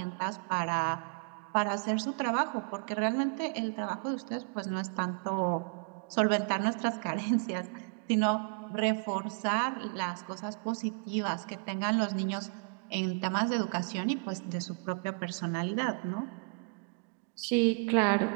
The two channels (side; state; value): left; quieter; 38.3 dB